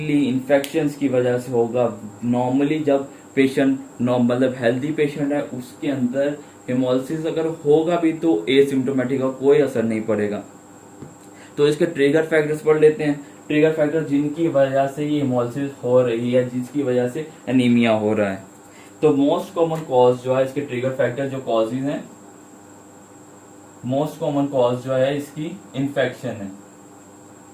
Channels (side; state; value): both; identical; correlation 1.00